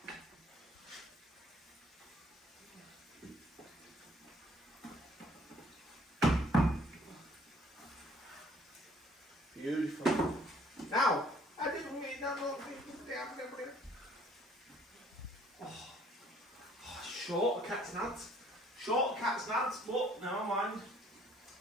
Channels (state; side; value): normal; both; correlation 0.59